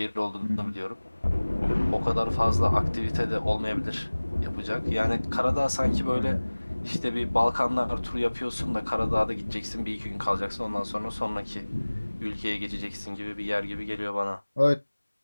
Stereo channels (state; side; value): inverted; both; correlation -1.00